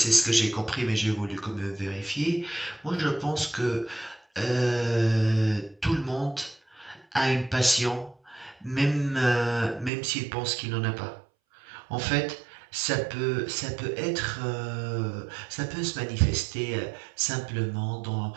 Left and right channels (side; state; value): left; drops out; at 9.9 s